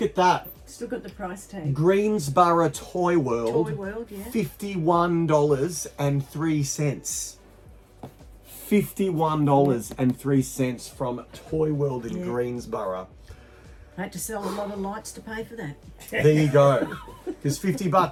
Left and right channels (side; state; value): both; identical; correlation 1.00